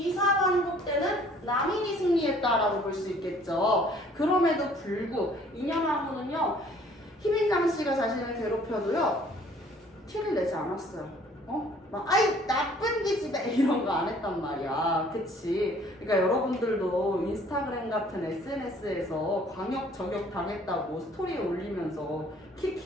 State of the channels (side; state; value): both; normal; correlation 0.57